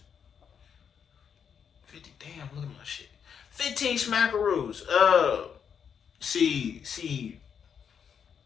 50, damn, look at my shit. 15 smackaroos. See,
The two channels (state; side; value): quieter; right; 7.4 dB